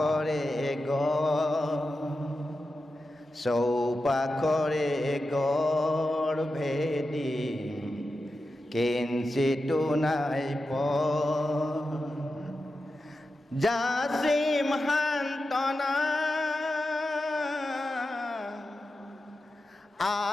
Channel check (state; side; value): normal; both; correlation 0.91